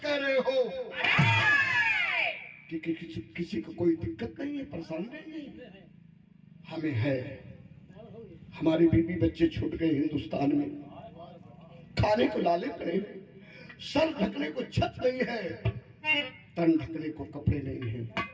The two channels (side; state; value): both; identical; correlation 1.00